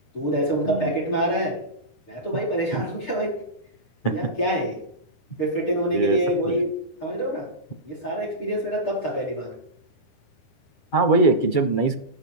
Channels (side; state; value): right; late; 9.9 ms